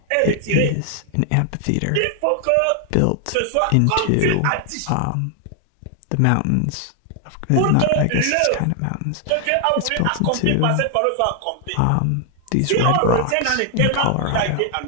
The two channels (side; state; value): both; different; correlation 0.00